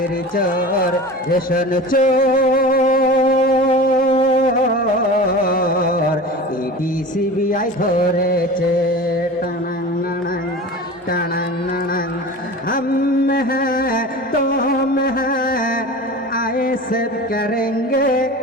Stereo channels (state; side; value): normal; both; correlation 0.34